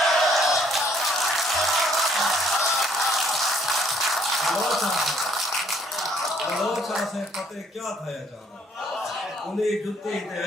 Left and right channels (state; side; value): normal; both; correlation 0.64